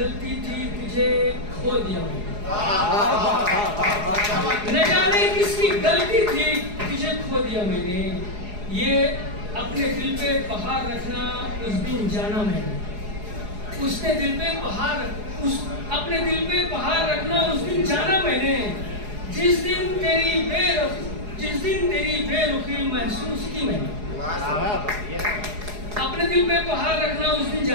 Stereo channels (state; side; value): late; left; 4.8 ms